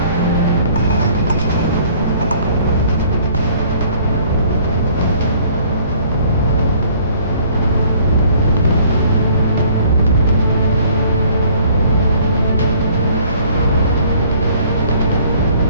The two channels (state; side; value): inverted; both; correlation -0.57